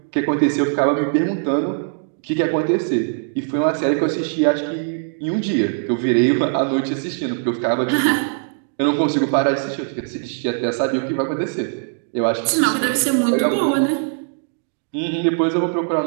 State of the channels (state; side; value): silent; left; digital silence